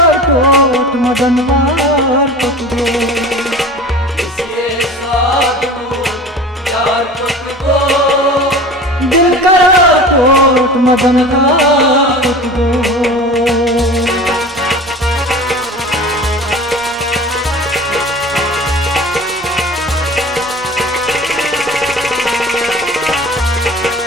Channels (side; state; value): both; normal; correlation 0.37